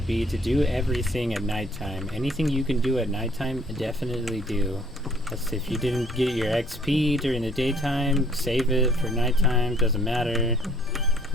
be to do everything at nighttime. Anything you can do at nighttime, definitely do. If you didn't get your XP during the daytime, save it for nighttime, doesn't matter.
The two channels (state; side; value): normal; both; correlation 0.59